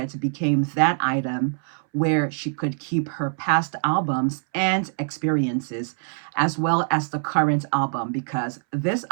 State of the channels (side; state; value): left; silent; 63 dB below the other